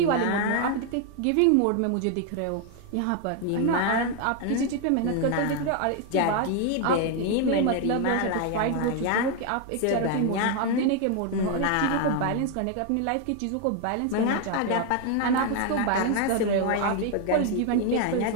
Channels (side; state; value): both; different; correlation 0.01